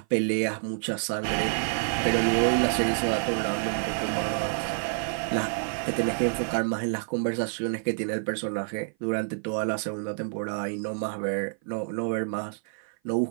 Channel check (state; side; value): silent; left; 55 dB below the other